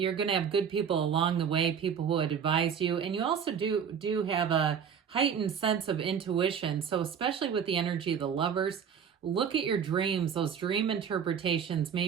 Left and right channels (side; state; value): left; quieter; 7.5 dB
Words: going to have good people along the way, people who would advise you. And you also do have a heightened sense of intuition. So especially with the energy of the Lovers, look at your dreams. Those dream interpretations may